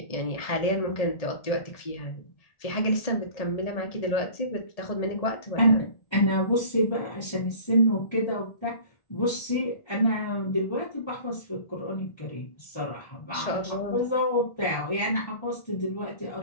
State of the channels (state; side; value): late; right; 1.7 ms